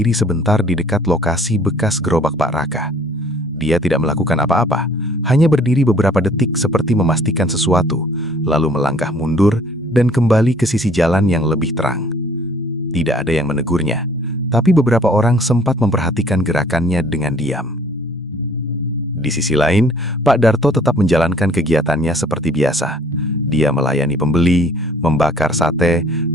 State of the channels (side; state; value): both; normal; correlation 0.57